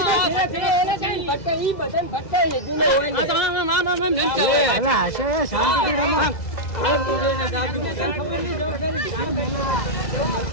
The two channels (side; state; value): right; late; 2.0 ms